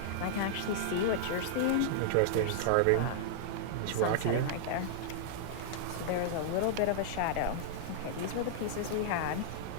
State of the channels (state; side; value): different; both; correlation -0.01